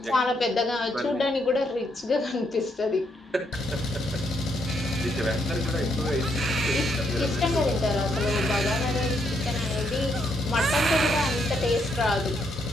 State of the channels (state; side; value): normal; both; correlation 0.76